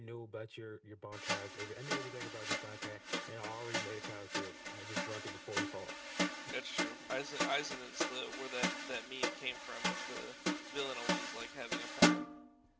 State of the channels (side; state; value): both; identical; correlation 1.00